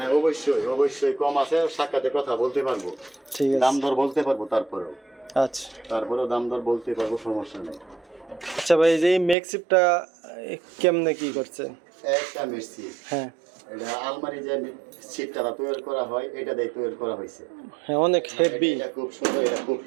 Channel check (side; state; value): left; drops out; at 9.3 s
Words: অবশ্যই অবশ্যই কম আছে, সাক্ষাতে কথা বলতে পারবো, ঠিক দাম আছে, দর বলতে পারবো, তারপরেও আচ্ছা। দাম দর বলতে পারবো, সমস্যা নেই। আচ্ছা ভাই, এই যে মেক্সিপটা কেমনে কি করছে? একটা মেসি, হ্যাঁ এটা আলমারি যে সিটটা তৈরি করা হয়, এটা দিয়ে তৈরি করা হয়েছে। হ্যাঁ, অনেক হেভি, এটা খুব সুন্দর, এটা খুব